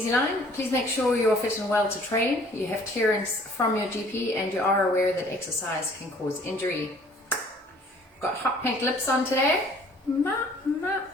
Please make sure you're fit and well to train. You have clearance from your GP and you are aware that exercise can cause injury. Got hot pink lips on today. Yeah,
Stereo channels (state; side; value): normal; both; correlation 0.55